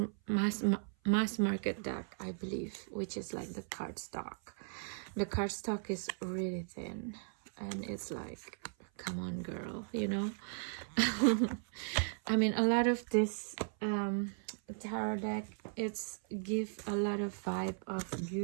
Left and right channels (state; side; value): silent; left; 53 dB below the other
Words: market deck, I believe, which is like the cardstock. The cardstock is really thin, and it's like, come on, girl, you know. I mean, a lot of this tarot deck, it's give a lot of vibe of